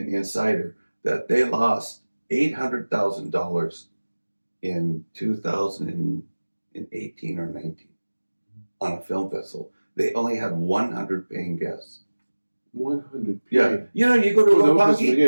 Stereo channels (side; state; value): both; inverted; correlation -1.00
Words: insider, that they lost $800,000 in 2018 or 19 on a film festival. They only had 100 paying guests. 100. Yeah. You go to